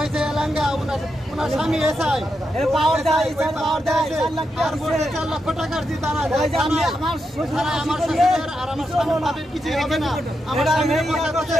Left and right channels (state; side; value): normal; both; correlation 0.85